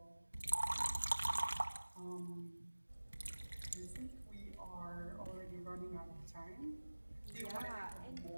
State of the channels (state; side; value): inverted; both; correlation -1.00